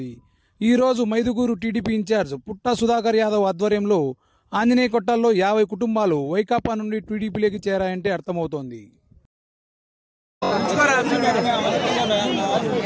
ఈ రోజు మైదుగూరు టీడీపీ ఇన్ఛార్జ్ పుట్టా సుధాకర్ యాదవ్ ఆధ్వర్యంలో ఆంజనేయ కొట్టాల్లో 50 కుటుంబాలు వైకాపా నుండి టీడీపీలోకి చేరాయంటే అర్థమవుతోంది.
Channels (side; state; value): both; identical; correlation 1.00